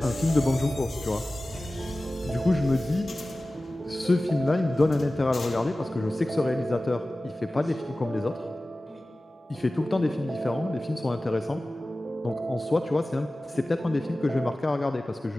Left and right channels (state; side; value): normal; both; correlation 0.96